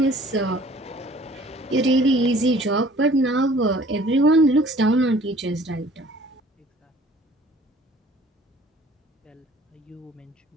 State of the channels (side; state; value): both; normal; correlation 0.53